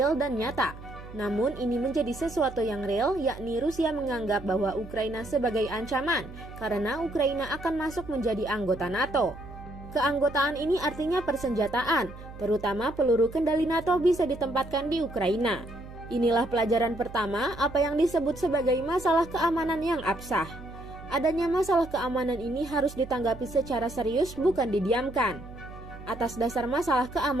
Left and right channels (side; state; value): right; noise; hum, 15 dB below the sound